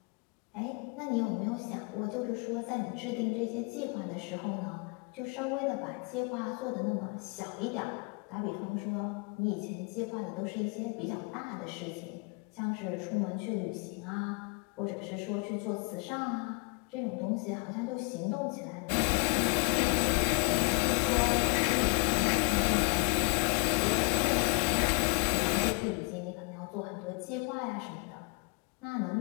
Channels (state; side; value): quieter; right; 32.8 dB